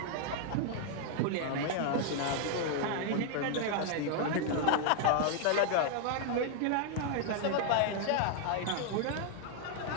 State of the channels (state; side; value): different; both; correlation 0.00